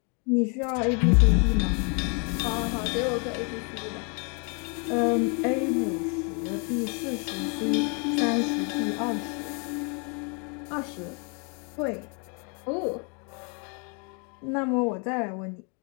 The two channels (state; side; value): quieter; right; 36.1 dB